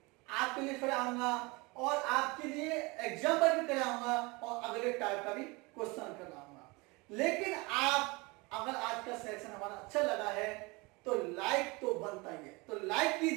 आपके लिए कराऊंगा और आपके लिए एग्जाम्पल भी कराऊंगा और अगले टाइप का भी क्वेश्चन कराऊंगा। लेकिन आप अगर आज का सेशन हमारा अच्छा लगा है तो लाइक तो बनता ही है, तो लाइक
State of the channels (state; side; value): quieter; left; 25.8 dB